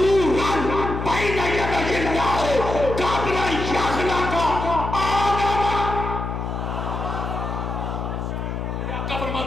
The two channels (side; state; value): left; noise; hum, 4 dB below the sound